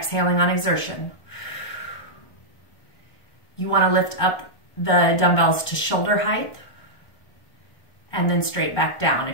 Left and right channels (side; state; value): right; late; 1.4 ms